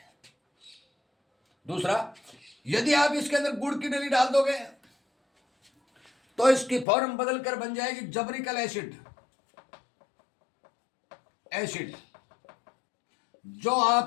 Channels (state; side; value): drops out; right; at 6.9 s